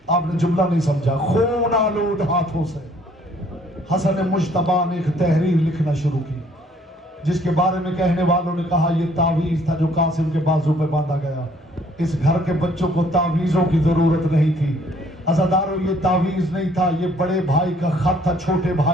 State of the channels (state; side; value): normal; both; correlation 0.61